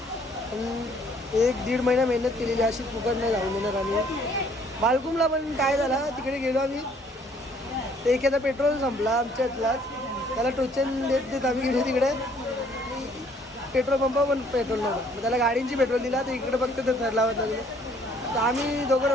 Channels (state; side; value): normal; both; correlation 0.61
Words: पण 1-1.5 महिना मेहनत केलेली अशी फुकट नाही जाऊन देणार आम्ही बालकुमला पण काय झालं तिकडे गेलो आम्ही ते एखादा पेट्रोल संपला आमच्यातलाच त्याला टोचन देत आम्ही गेलो तिकडे पेट्रोल पंप पण पेट्रोल नव्हतं मग त्याला गाडींची पेट्रोल दिला तर इकडे फक्त ते थर लावत लागले तर आम्ही दोघं